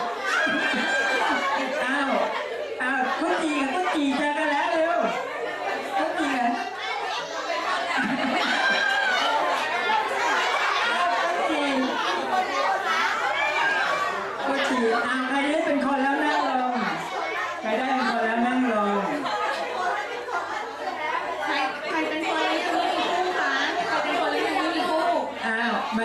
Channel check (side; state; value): both; identical; correlation 1.00